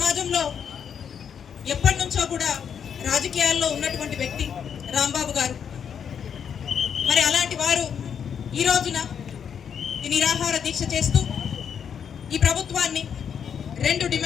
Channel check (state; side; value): quieter; right; 7.7 dB